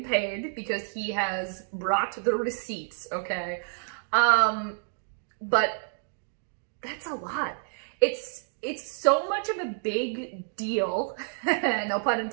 paid because he has brought the receipts, okay? But that's a lot. It's so much of a big deal, no pun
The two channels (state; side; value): silent; left; digital silence